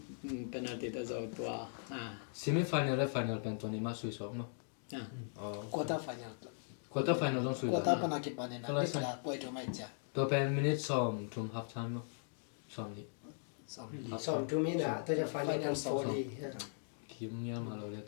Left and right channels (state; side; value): silent; right; digital silence